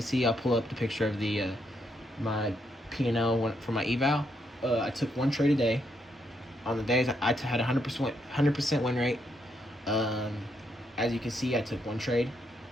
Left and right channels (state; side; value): normal; both; correlation 0.77